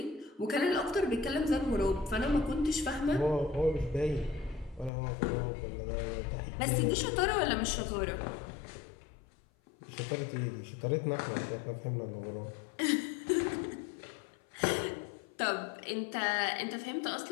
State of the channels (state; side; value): drops out; right; at 4.9 s